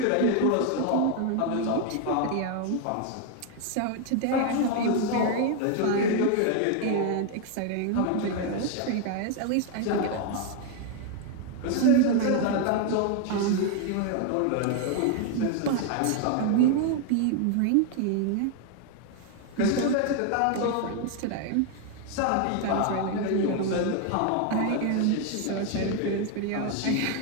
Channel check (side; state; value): both; different; correlation 0.01